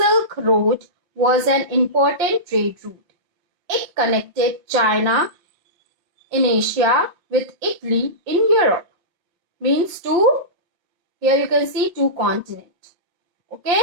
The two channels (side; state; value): left; late; 5.9 ms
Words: Road was an important trade route. It connected China in Asia with Italy in Europe. Means here you can see two continents. Okay,